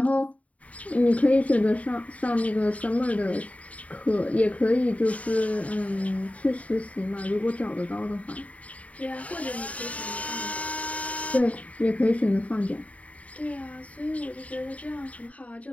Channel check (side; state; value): right; late; 0.068 ms